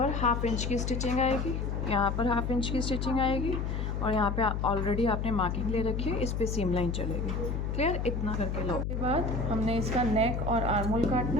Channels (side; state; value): left; noise; hum, 1 dB below the sound